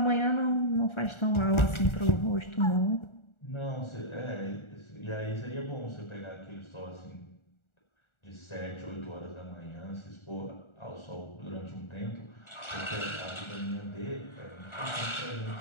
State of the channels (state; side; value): late; right; 1.4 ms